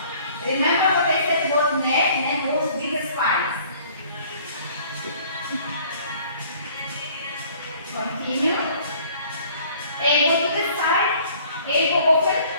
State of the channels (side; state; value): both; inverted; correlation -0.54